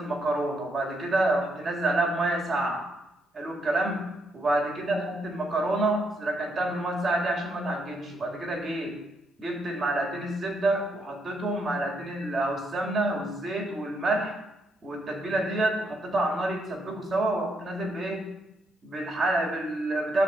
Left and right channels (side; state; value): both; normal; correlation 0.76